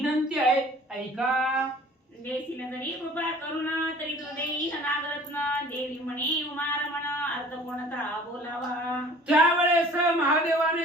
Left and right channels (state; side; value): normal; both; correlation 0.48